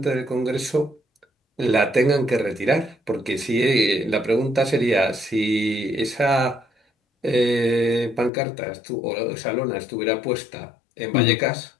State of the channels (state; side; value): drops out; right; at 8.3 s